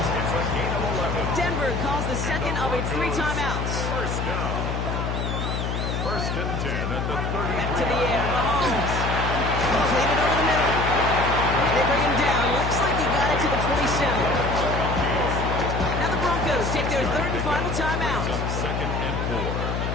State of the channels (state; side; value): noise; left; hum, 1 dB below the sound